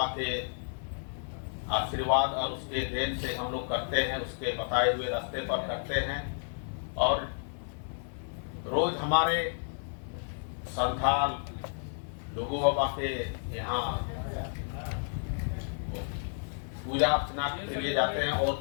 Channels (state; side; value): silent; right; 57 dB below the other